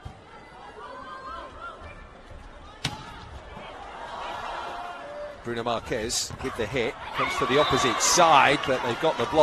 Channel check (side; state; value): both; identical; correlation 1.00